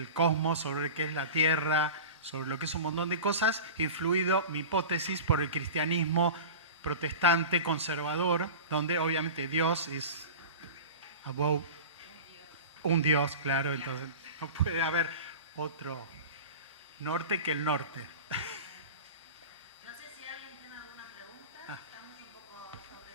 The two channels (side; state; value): both; inverted; correlation -0.33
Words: cosmos, sobre lo que es la Tierra, sobre lo que es un montón de cosas, influido, mi hipótesis, por el cristianismo protestante, conservador, donde obviamente Dios es above, un Dios, claro, entonces no puede haber otro norte que el norte. No sé si alguien tiene alguna pregunta, estamos un poco